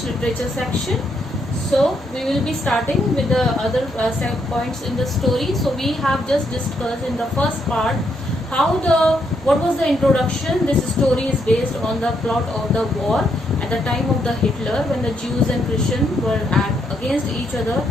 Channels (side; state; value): both; normal; correlation 0.76